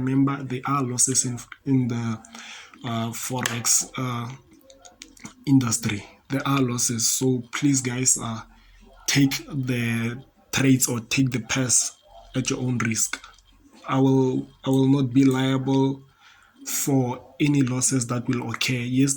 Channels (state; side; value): identical; both; correlation 1.00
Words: there are losses in the Forex industry. There are losses, so please guys, take the trades or take the pass at your own risk. I will not be liable for any losses that will occur. Yes,